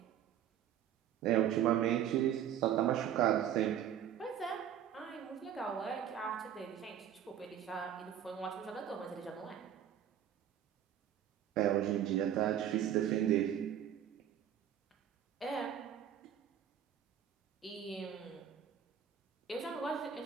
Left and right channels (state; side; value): quieter; left; 10.0 dB